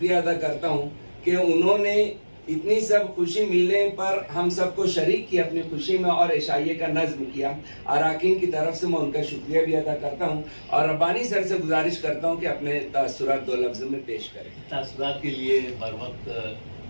अदा करता हूँ कि उन्होंने इतनी सब खुशी मिलने पर हम सबको शरीक किया अपनी खुशी में और इशाइये का नज्म किया। अराकीन की तरफ से मैं उनका शुक्रिया भी अदा करता हूँ और रब्बानी सर से गुजारिश करता हूँ कि अपने तासुरात 2 लफ्ज़ों में पेश करें। तासुरात के लिए बर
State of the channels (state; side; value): inverted; both; correlation -1.00